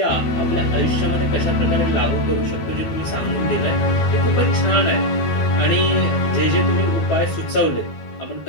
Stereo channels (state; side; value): late; right; 12 ms